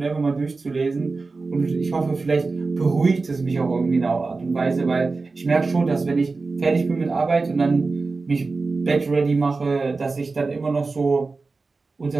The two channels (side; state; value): left; quieter; 3.9 dB